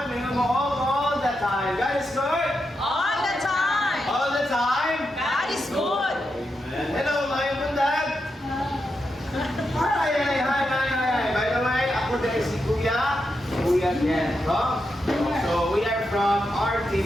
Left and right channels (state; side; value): normal; both; correlation 0.86